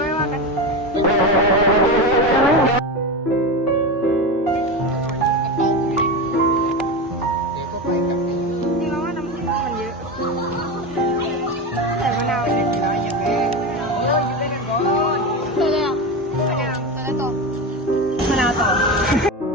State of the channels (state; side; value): normal; both; correlation 0.20